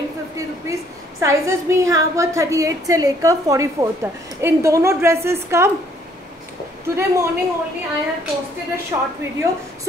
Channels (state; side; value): normal; both; correlation 0.64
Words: rupees. Sizes भी यहाँ पर 38 से लेकर 44 तक. इन दोनों ड्रेसेस का today morning only I have posted a short video.